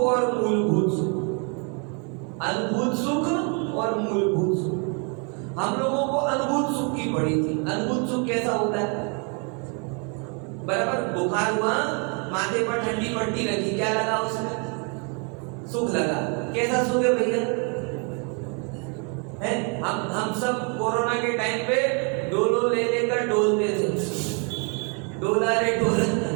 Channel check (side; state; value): left; quieter; 36.6 dB